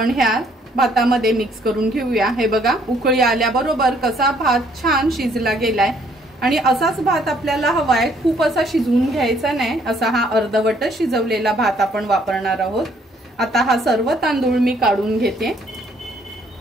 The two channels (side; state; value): both; normal; correlation 0.65